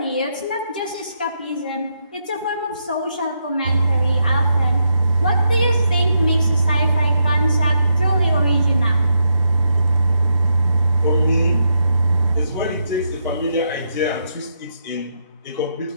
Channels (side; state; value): both; inverted; correlation -0.81